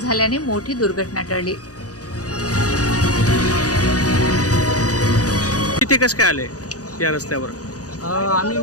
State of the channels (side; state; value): right; late; 0.67 ms